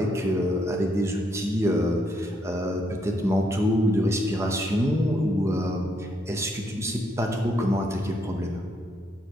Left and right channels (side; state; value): both; normal; correlation 0.74